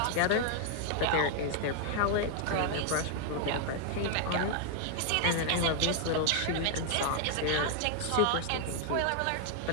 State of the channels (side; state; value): both; different; correlation 0.00